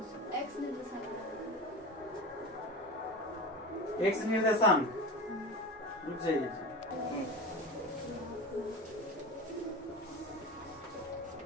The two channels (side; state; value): both; normal; correlation 0.29